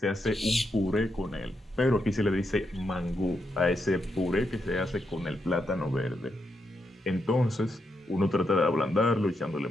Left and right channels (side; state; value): both; normal; correlation 0.82